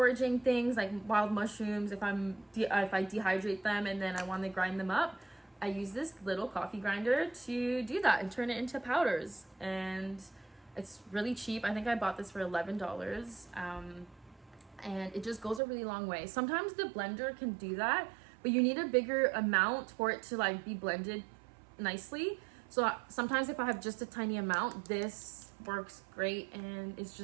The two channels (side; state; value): left; drops out; at 15.6 s